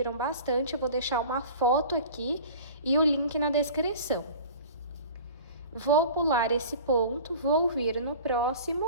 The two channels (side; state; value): both; inverted; correlation -0.41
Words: bastante. Eu vou deixar uma foto aqui e o link na descrição. Vou pular esse ponto, vou vir no